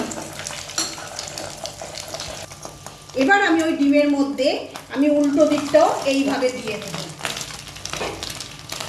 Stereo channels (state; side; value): identical; both; correlation 1.00